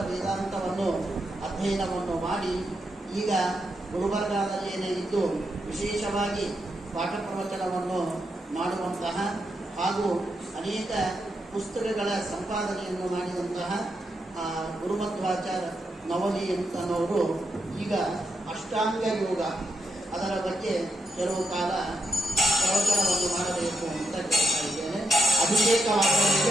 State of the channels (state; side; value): normal; both; correlation 0.82